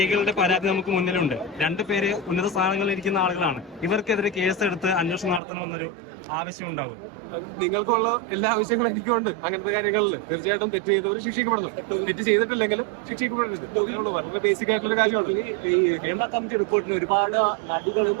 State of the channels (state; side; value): drops out; left; at 5.4 s